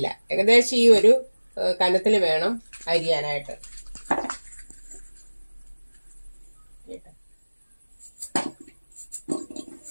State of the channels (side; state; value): both; inverted; correlation -1.00